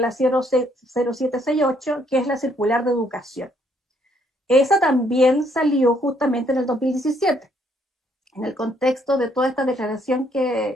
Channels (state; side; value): normal; both; correlation 0.69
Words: 0768, que es la circular de educación. Esa también salió justamente en el 2017, en el contexto de toda esta declaración